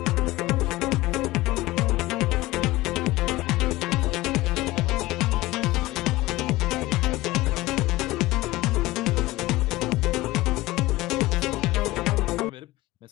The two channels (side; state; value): right; quieter; 18.7 dB